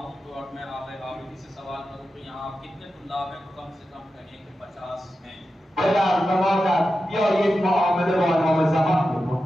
तो और मैं आगे आबिदी से सवाल करूँ कि यहाँ कितने तुल्लाब हैं, तो कम से कम कहें कि 50 हैं। پدر و مادر بیایید معامله با امام زمان بکن.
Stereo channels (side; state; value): both; normal; correlation 0.91